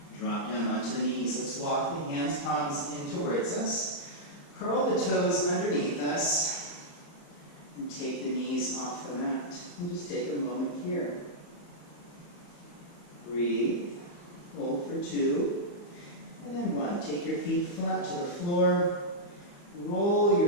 Drop down onto the knees. Let's walk the hands, palms in towards us. Curl the toes underneath us. And take the knees off the mat. And just take a moment here. Breathe. Hold for 2. And then 1. Take your feet flat to the floor. Roll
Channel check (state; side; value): late; right; 34 ms